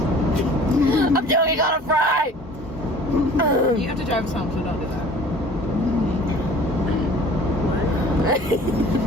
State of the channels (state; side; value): normal; both; correlation 0.48